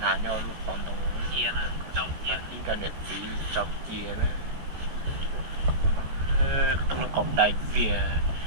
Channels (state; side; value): late; left; 14 ms